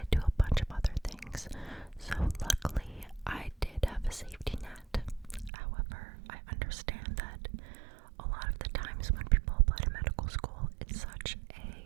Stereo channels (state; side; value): drops out; left; at 5.5 s